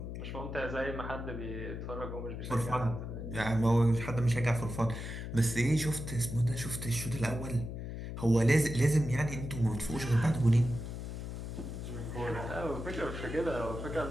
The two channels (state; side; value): noise; left; hum, 7 dB below the sound